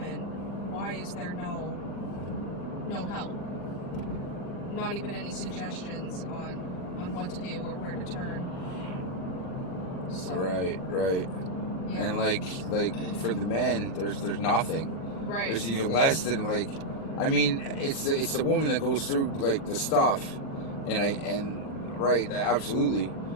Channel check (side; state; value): right; late; 40 ms